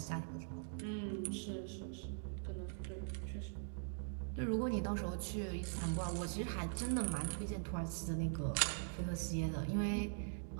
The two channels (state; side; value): silent; left; digital silence